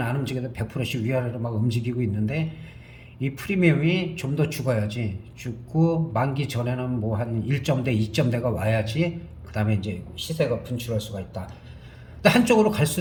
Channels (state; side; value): identical; both; correlation 1.00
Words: 안 움직여도 100%씩 위아래로 막 움직이고 있는데, 이 프리미엄이 좀 더 죽어야지, 죽고 만기 전에는 뭐 한 1점대 2점대가 와야지 그 다음에 이제 시세가 분출할 수가 있다. 근데 한쪽으로 갈